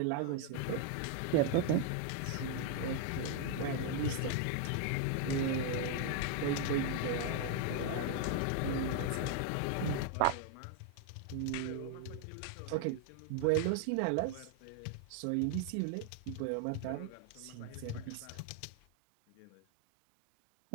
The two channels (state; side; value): different; both; correlation 0.00